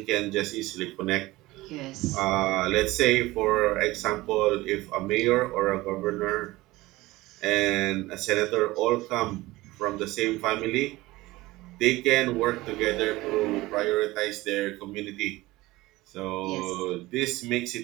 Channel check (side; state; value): left; quieter; 19.3 dB